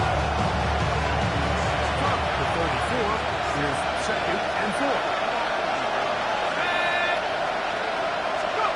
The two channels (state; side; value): identical; both; correlation 1.00